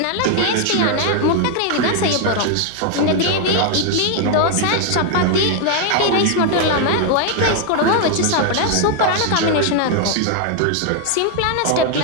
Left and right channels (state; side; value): different; both; correlation 0.00